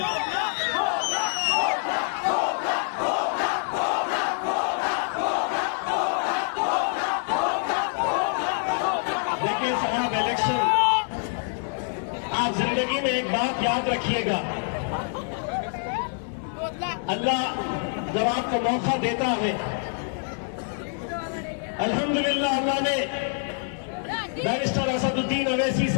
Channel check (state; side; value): silent; right; 57 dB below the other